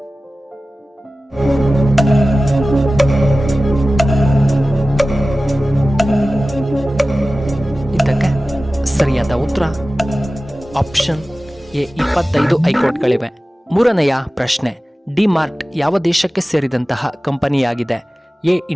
ಇದಕ್ಕೆ ಸರಿಯಾದ ಉತ್ತರ ಆಪ್ಷನ್ ಎ 25 ಹೈಕೋರ್ಟ್ಗಳಿವೆ. ಮೂರನೆಯ ಪ್ರಶ್ನೆ, ಡಿ ಮಾರ್ಟ್ ಯಾವ ದೇಶಕ್ಕೆ ಸೇರಿದಂತಹ ಕಂಪನಿಯಾಗಿದೆ? A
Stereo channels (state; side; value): normal; both; correlation 0.96